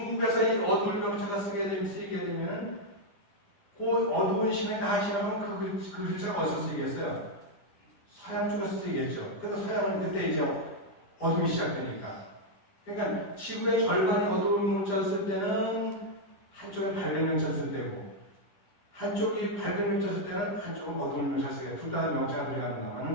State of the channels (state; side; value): late; right; 10 ms